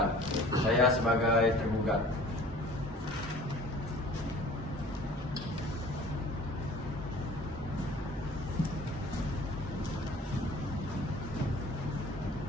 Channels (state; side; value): normal; both; correlation 0.47